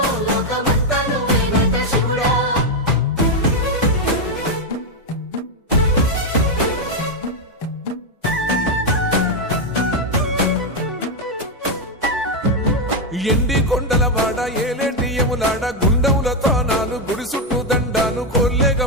లోకమంతా నువ్వే నట శివుడా ఎండి కొండల వాడ ఏలేటి యములాడ గుండములతో నాలు గుడి చుట్టూ దండాలు కొల్లేగ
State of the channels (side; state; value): both; normal; correlation 0.04